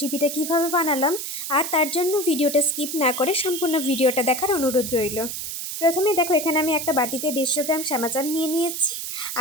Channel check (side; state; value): right; noise; hiss, 5 dB below the sound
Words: কিভাবে বানালাম, আর তার জন্য ভিডিওটা স্কিপ না করে সম্পূর্ণ ভিডিওটা দেখার অনুরোধ রইল। প্রথমে দেখো, এখানে আমি একটা বাটিতে 150 গ্রাম শ্যামা চাল নিয়ে নিয়েছি